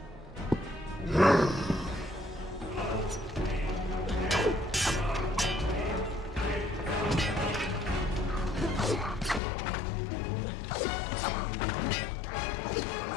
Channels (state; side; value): drops out; right; at 9.4 s